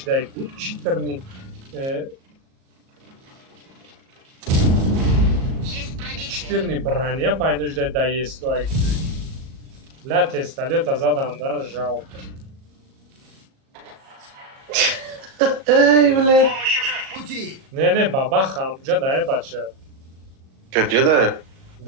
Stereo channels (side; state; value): left; late; 37 ms